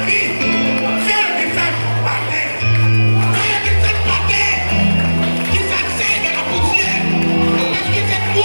vie, fais le descendre par terre. Fais le descendre par terre. Qui s'asseye de la poussière. Parce que c'est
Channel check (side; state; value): both; inverted; correlation -1.00